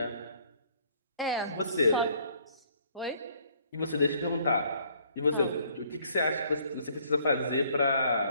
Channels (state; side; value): inverted; both; correlation -0.62